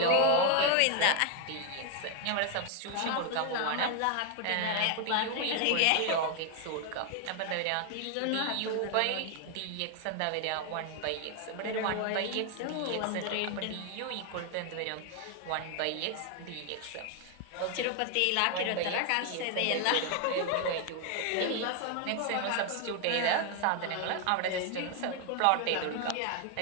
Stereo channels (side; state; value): both; different; correlation 0.00